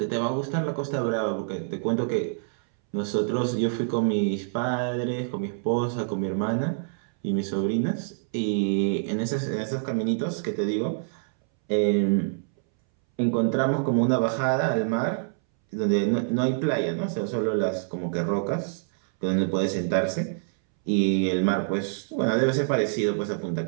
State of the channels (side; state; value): left; silent; 61 dB below the other